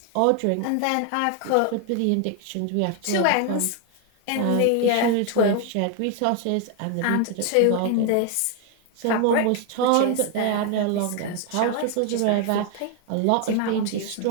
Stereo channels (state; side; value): different; both; correlation 0.01